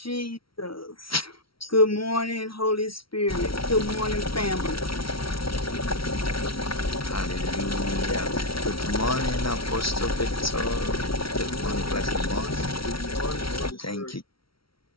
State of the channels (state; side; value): late; right; 0.75 ms